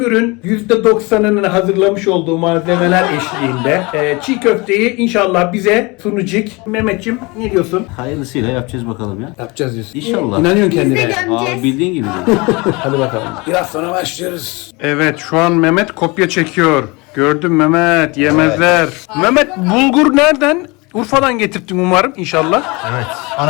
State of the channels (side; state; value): right; quieter; 25.9 dB